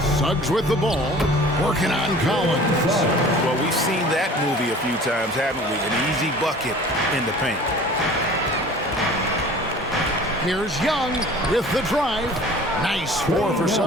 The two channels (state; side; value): normal; both; correlation 0.45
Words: Suggs with the ball, working on Collins. Well, we've seen that movie a few times, haven't we? An easy bucket in the paint. Here's Young with the drive. Nice 4 for